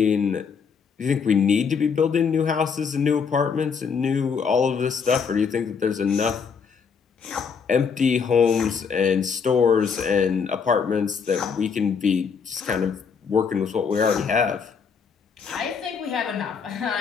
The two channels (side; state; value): right; quieter; 6.1 dB